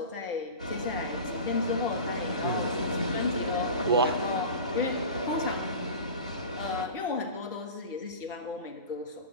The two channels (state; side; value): inverted; both; correlation -0.34